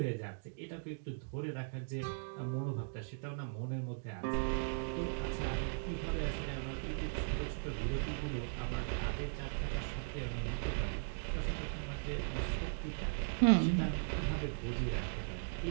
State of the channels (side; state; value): left; silent; digital silence